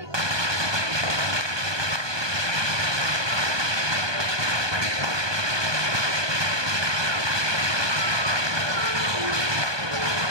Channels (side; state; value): left; late; 1.2 ms